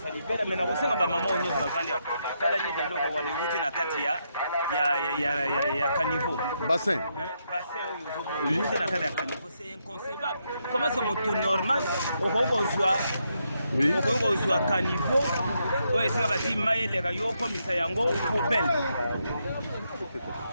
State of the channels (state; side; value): inverted; both; correlation -0.80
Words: ça. Mais on sait que ma maman, on est dans la quand la nuit de l'eau, on va les routes dans Katia, il y a caniveau. Bassin. Oui. C'est inconcevable. Comment c'est mon tour normal? Au revoir. Oui. Au revoir, caniveau. Oui, c'est la team Maël, les rayons, comme ça, yango, poubelle.